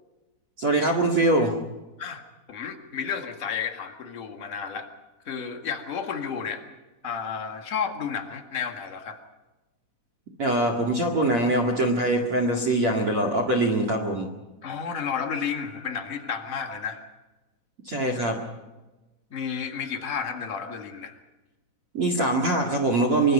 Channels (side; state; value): left; late; 4.0 ms